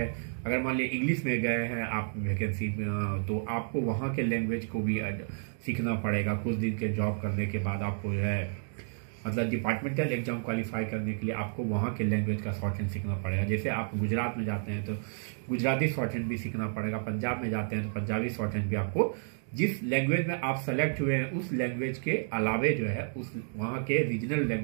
अगर मान लीजिए इंग्लिश में गए हैं आप वैकेंसी में, तो आपको वहाँ के लैंग्वेज को भी सीखना पड़ेगा। कुछ दिन के जॉब करने के बाद आपको जो है मतलब डिपार्टमेंटल एग्जाम क्वालिफाई करने के लिए आपको वहाँ के लैंग्वेज का शॉर्ट हैंड सीखना पड़ेगा। जैसे आप गुजरात में जाते हैं तो गुजराती शॉर्ट हैंड भी सीखना पड़ेगा, पंजाब में जाते हैं तो पंजाबी शॉर्ट हैंड भी आपको, जिस लैंग्वेज में आप सेलेक्ट हुए हैं उस लैंग्वेज के अलावे जो है उस वहाँ के रीजनल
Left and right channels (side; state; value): left; silent; digital silence